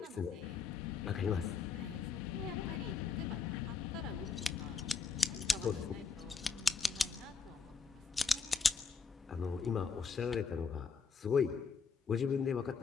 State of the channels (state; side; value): quieter; right; 5.3 dB